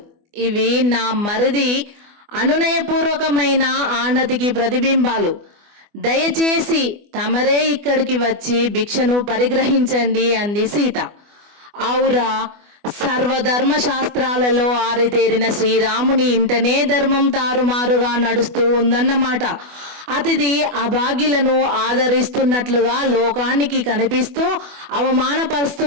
ఇవి నా మరిది అనునయపూర్వకమైన ఆనతికి ప్రతిబింబాలు. దయచేసి తమరే ఇక్కడికి వచ్చి భిక్షను పరిగ్రహించండి అంది సీత. ఔరా, సర్వధర్మ శాస్త్రాలలో ఆరితేరిన శ్రీరాముని ఇంటనే ధర్మం తారుమారుగా నడుస్తూ ఉందన్నమాట. అతిథి అభాగ్యులను ఆదరిస్తున్నట్లుగా లోకానికి కనిపిస్తూ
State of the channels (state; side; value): late; left; 24 ms